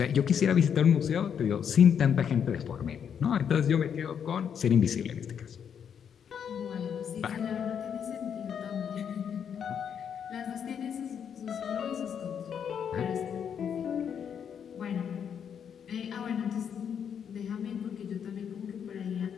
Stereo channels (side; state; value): right; quieter; 7.9 dB